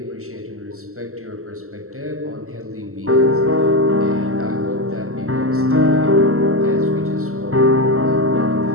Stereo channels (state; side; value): late; left; 0.63 ms